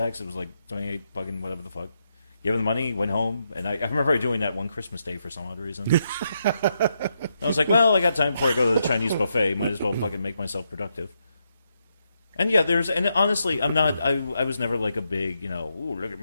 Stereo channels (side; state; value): both; inverted; correlation -0.81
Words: It was 28 fucking whatever the fuck. Gave him the money, went home, and I remember doing that one Christmas day for some odd reason. I was like, well, I got time before I go to the Chinese buffet. Might as well fucking make myself productive. And yeah, and honestly, I was never a big, ooh, look at